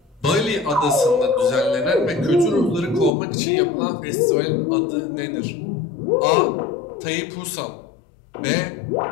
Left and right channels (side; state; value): right; drops out; at 3.1 s